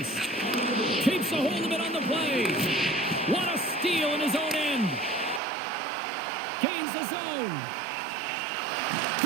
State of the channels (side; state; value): left; drops out; at 5.4 s